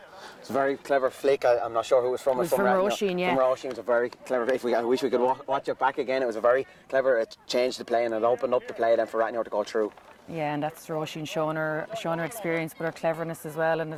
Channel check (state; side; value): identical; both; correlation 1.00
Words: It's a very clever flick. I'm not sure who it was from. It was from Roisin, yeah. From Roisin, it was a very clever flick. I wish we could watch it back again. It was a very clever, it changed the play and it opened up the play then for Rathnure to go through. Yeah, and that's Roisin showing her experience, but her cleverness as well, and